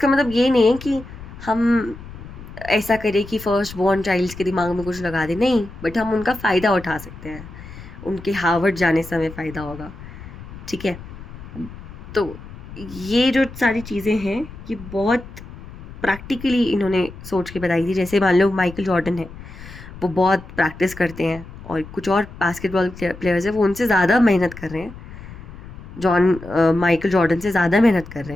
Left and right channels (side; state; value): left; noise; rumble, 15 dB below the sound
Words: मतलब ये नहीं है कि हम ऐसा करें कि फर्स्ट बॉर्न चाइल्ड्स के दिमाग में कुछ लगा दें, नहीं, बट हम उनका फ़ायदा उठा सकते हैं, उनके हार्वर्ड जाने से हमें फ़ायदा होगा, ठीक है। तो ये जो सारी चीज़ें हैं ये बहुत प्रैक्टिकली इन्होंने सोच के बताई थी। जैसे मान लो माइकल जॉर्डन है, वो बहुत प्रैक्टिस करते हैं, और कुछ और बास्केटबॉल प्लेयर्स हैं वो उनसे ज़्यादा मेहनत कर रहे हैं, माइकल जॉर्डन से ज़्यादा मेहनत कर रहे